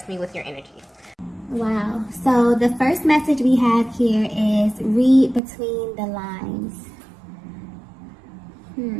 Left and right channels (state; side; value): drops out; left; at 5.4 s